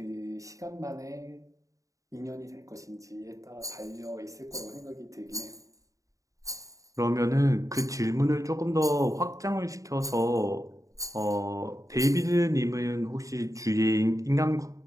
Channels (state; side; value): late; left; 0.16 ms